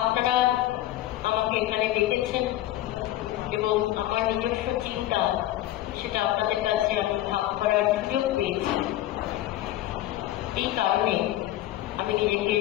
আমাকে এখানে ডেকেছেন এবং আমার নিজস্ব চিন্তা সেটা আপনাদের কাছে আমি ভাগ করার সুযোগ পেয়েছি। এই কারণে আমি নিজেকে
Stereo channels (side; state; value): right; quieter; 14.7 dB